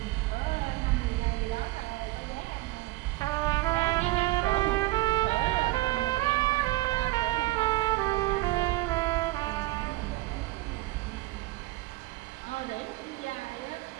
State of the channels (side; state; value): left; quieter; 19.5 dB